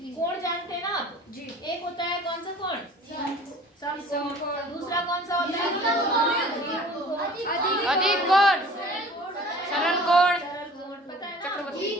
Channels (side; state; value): both; normal; correlation 0.46